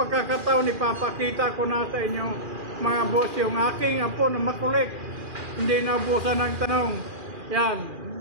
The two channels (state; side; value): late; left; 2.4 ms